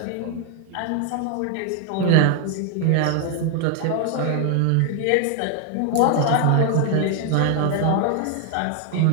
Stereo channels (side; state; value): both; different; correlation 0.00